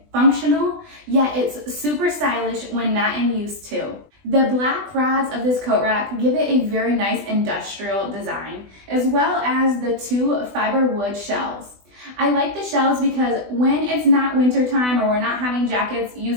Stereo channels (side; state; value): left; late; 20 ms